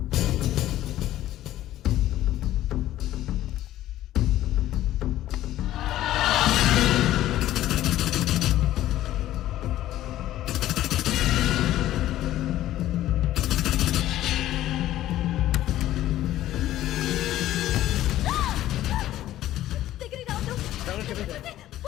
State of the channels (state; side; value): quieter; right; 13.8 dB